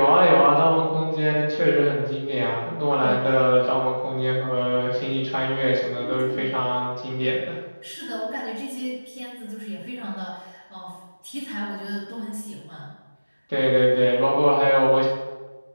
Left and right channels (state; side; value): inverted; both; correlation -1.00